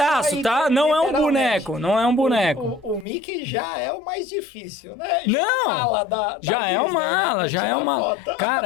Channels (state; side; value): drops out; right; at 3.1 s